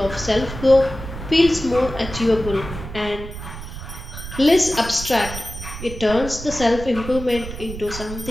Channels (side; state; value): right; noise; rumble, 10 dB below the sound